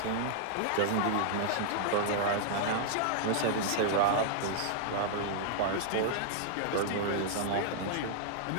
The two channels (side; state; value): both; different; correlation -0.01